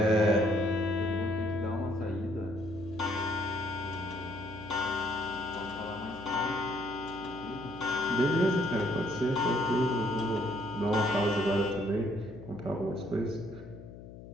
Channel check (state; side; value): noise; left; hum, 15 dB below the sound